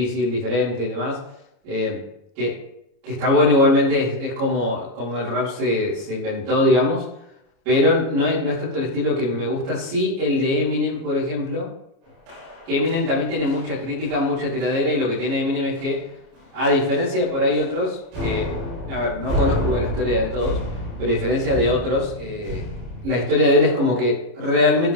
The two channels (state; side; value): late; left; 29 ms